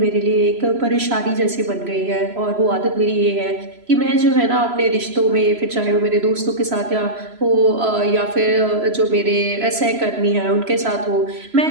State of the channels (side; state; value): left; late; 3.0 ms